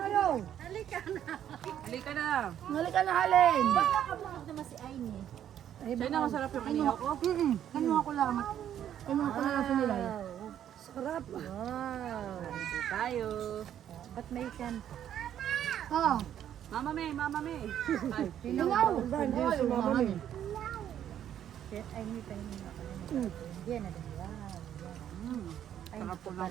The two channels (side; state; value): left; quieter; 10.3 dB